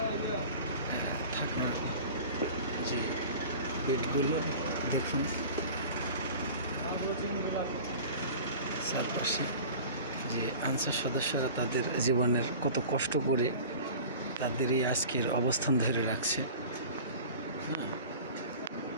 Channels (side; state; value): both; inverted; correlation -0.39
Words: থাকা যে বেডগুলো দেখুন, চারপাশে যে আনসার সদস্যরা তাদের জীবনের কত কষ্ট করে তাদের এই আজকের অবস্থান ধরে রাখছে।